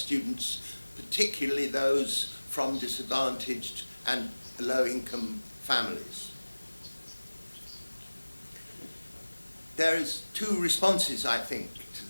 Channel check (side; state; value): both; inverted; correlation -1.00